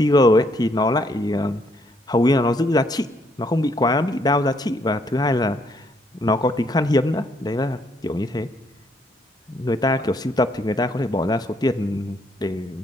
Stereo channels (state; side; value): normal; both; correlation 0.70